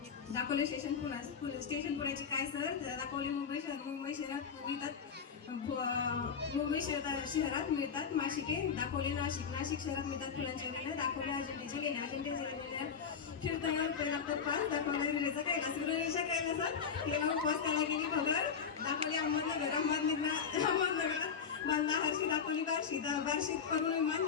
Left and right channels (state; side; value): quieter; right; 6.5 dB